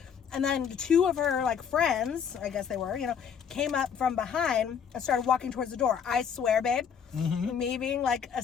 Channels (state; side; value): quieter; right; 7.4 dB